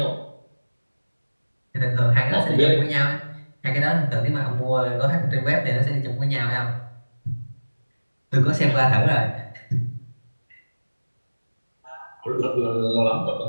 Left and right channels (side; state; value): both; inverted; correlation -1.00